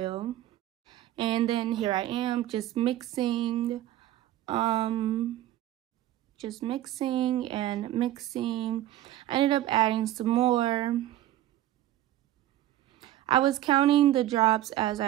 And then here I am just mixing and mixing. I ended up adding some more. I was counting the drops as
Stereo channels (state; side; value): quieter; left; 13.7 dB